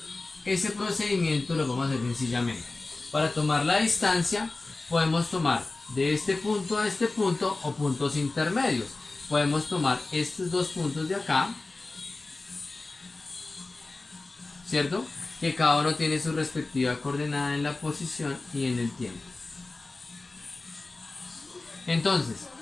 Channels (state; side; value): quieter; right; 3.3 dB